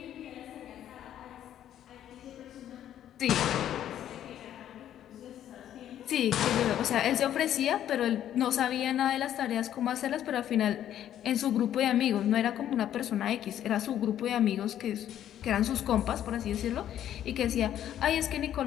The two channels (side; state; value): right; quieter; 11.0 dB